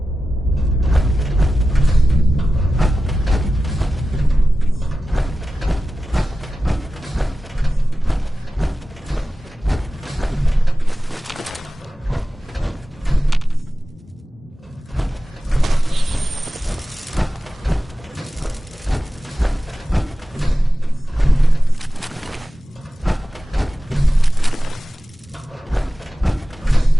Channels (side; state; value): both; normal; correlation 0.94